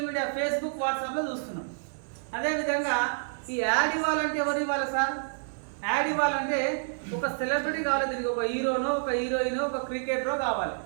మీడియా ఫేస్బుక్ వాట్సాప్లో చూస్తున్నాం. అదేవిధంగా ఈ యాడ్ ఇవ్వాలంటే ఎవరు ఇవ్వాలి సార్? యాడ్ ఇవ్వాలంటే ఒక సెలబ్రిటీ కావాలి. దీనికి ఒక హీరోనో, ఒక హీరోయిన్, ఒక క్రికెటరో కావాలి.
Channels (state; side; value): silent; left; 59 dB below the other